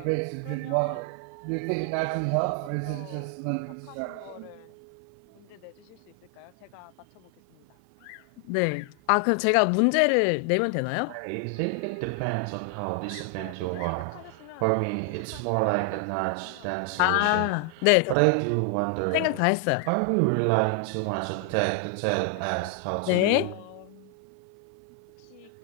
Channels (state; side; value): different; both; correlation 0.00